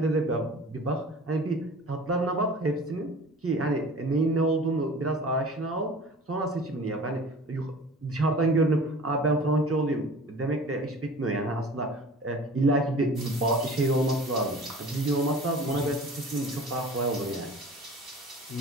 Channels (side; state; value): both; normal; correlation 0.42